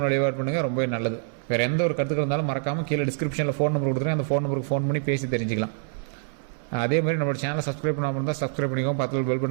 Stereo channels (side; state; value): left; silent; 61 dB below the other